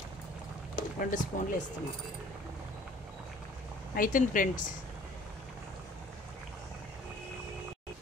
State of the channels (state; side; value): normal; both; correlation 0.52